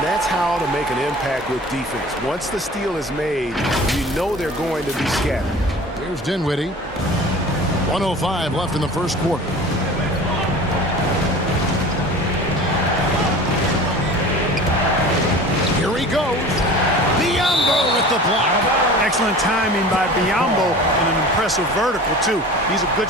that's how to make an impact with defense. Once the steal is made, you know they're going to be scattered. Here's Dinwiddie. 1:05 left in the first quarter. Here he goes. Biombo with the block. Excellent timing by Biombo and an impressive vertical, too. He's a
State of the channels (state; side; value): normal; both; correlation 0.40